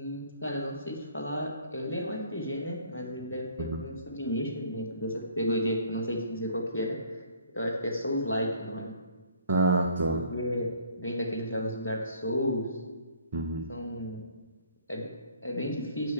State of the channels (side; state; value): both; inverted; correlation -0.56